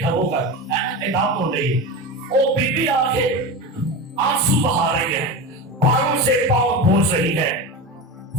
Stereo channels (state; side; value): normal; both; correlation 0.24